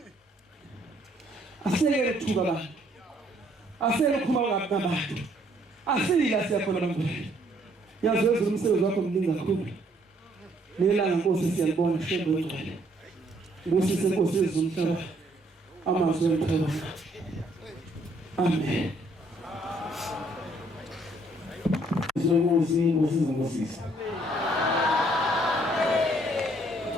asiyeke ukuthuka abantu asiyeke ukukhuluma ngabantu asila siyakhona abantu yazi wezulu umsebenzi wakho mningi kakhulu nelanga Nkosi siyalibona shembe ngcwele ngosise Nkosi yezumhlaba amazwi emphela amen Nkosi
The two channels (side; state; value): both; normal; correlation 0.66